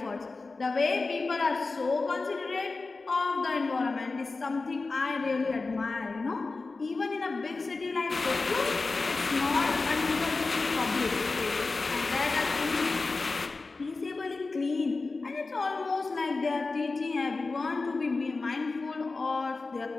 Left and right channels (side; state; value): right; quieter; 3.8 dB